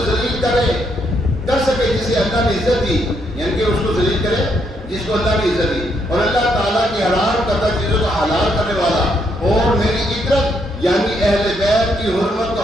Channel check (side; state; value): both; normal; correlation 0.75